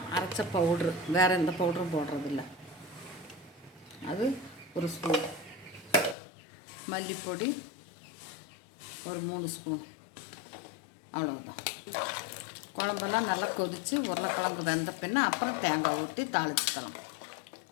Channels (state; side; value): drops out; right; at 6.2 s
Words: அரைச்ச பவுட்ரு, வேறு எந்த பவுட்ரும் போடுறதில்ல, அது 1 ஸ்பூன், மல்லிப்பொடி ஒரு 3 ஸ்பூன், அவ்வளோதான். குழம்பெல்லாம் நல்லா கொதித்து உருளைக்கிழங்கு வெந்த பின்ன அப்புறம் தேங்காய் ஊற்றி தாளிச்சுக்கலாம்.